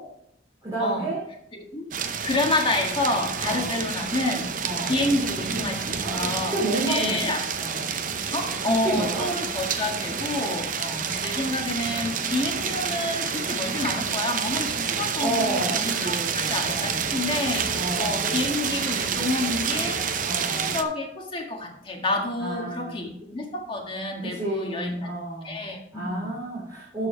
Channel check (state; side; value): normal; both; correlation 0.18